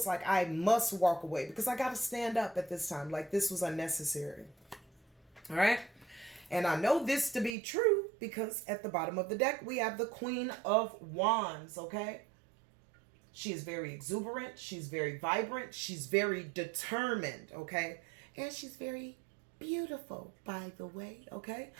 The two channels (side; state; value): left; drops out; at 7.6 s